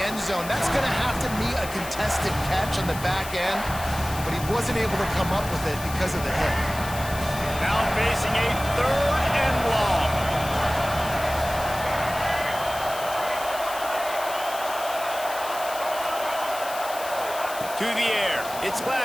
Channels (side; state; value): left; noise; hiss, 12 dB below the sound